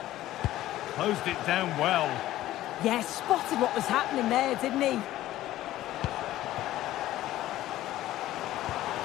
Closed it down well. Yeah, spotted what was happening there, didn't he?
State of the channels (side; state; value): right; quieter; 14.7 dB